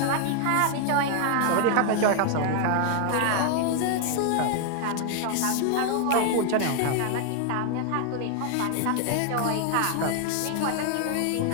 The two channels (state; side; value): different; both; correlation 0.00